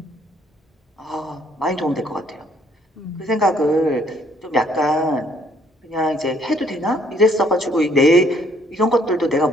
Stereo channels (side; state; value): both; normal; correlation 0.65